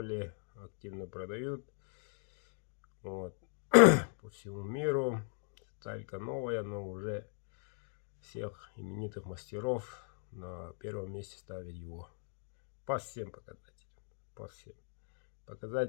активно продают. Вот. По всему миру. Сталька новая, но уже всех именитых мастеров на первом месте ставят его. По всем показателям. По всем.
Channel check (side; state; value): right; silent; 52 dB below the other